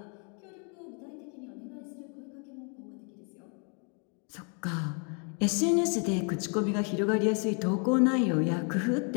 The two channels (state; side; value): quieter; right; 38.3 dB